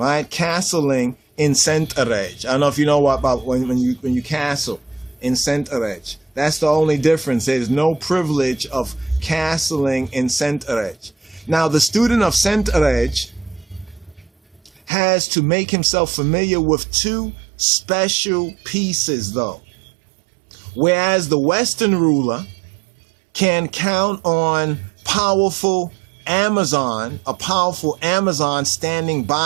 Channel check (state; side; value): drops out; left; at 14.9 s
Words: Castling in Centerej. I don't know if you know about when you castle in Centerej. That's the only difference. There's no privilege of castling in Centerej. Now, the student of Centerej has to make himself familiar with two special pieces, though. Whereas the Western ruler can count on a powerful Amazon standing